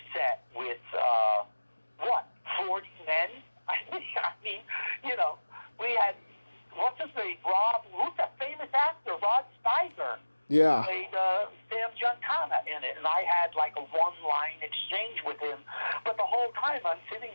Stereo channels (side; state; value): both; inverted; correlation -1.00